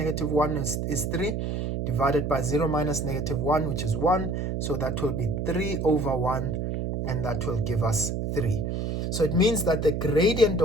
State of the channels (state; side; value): noise; right; hum, 2 dB below the sound